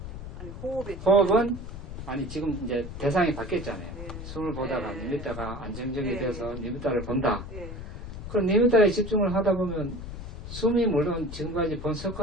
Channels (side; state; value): left; noise; rumble, 9 dB below the sound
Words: 아니, 호흡은 아니 지금 이제 대상이 바뀌었잖아요. 네. 숨을 보다가 네. 2m가 안정적이 네. 돼서 2m를 본다. 예. 그럼 2m에 집중을 하다 보면 숨이 물론 지금까지 본